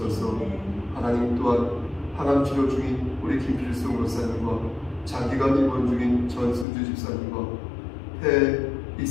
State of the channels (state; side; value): drops out; right; at 6.7 s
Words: 하나님 또한 항암 치료 중인 우리 김필승 권사님과 장기간 입원 중인 전순주 집사님과 폐